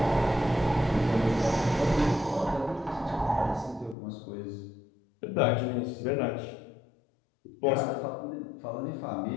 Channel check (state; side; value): drops out; right; at 4.0 s